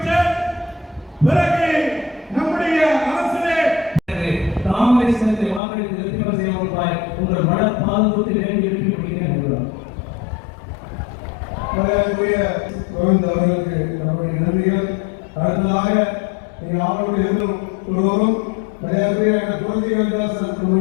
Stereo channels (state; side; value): drops out; right; at 5.6 s